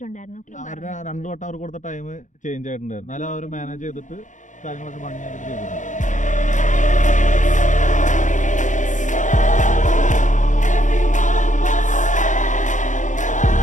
2 വട്ടം അവർ കൊടുത്ത ടൈം ചേഞ്ച് ആയിട്ടുണ്ടായിരുന്നു, എന്നാലും അവർ മാനേജ് ചെയ്തിട്ട് കാര്യങ്ങളൊക്കെ ഭംഗിയായിട്ട് ചെയ്തിട്ടുണ്ട്.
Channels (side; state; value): right; late; 0.36 ms